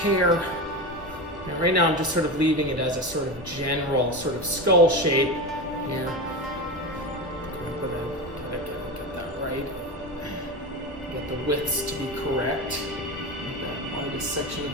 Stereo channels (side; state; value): both; normal; correlation 0.21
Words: And right now I'm just sort of leaving it as a sort of general sort of skull shape here. Get that right. Get the widths to be correct. That widest section of